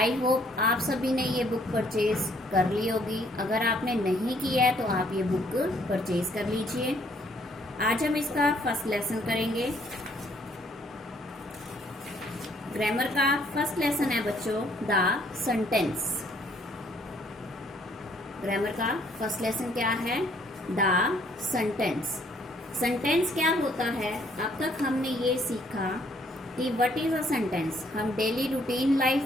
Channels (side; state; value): both; normal; correlation 0.65